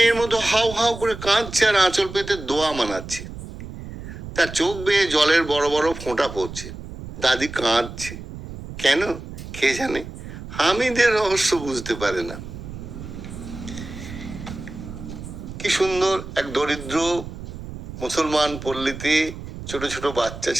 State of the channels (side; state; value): right; noise; rumble, 11 dB below the sound